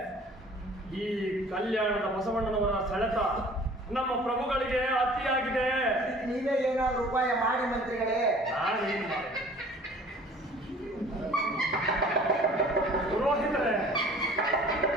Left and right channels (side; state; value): both; normal; correlation 0.49